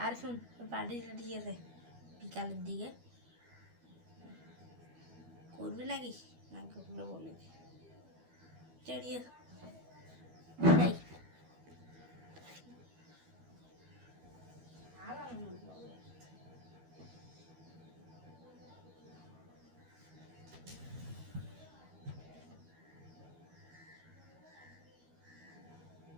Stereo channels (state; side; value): late; left; 12 ms